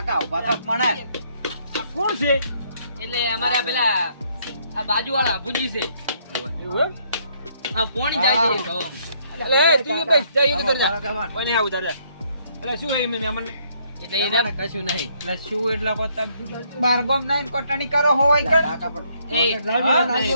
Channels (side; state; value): both; inverted; correlation -0.69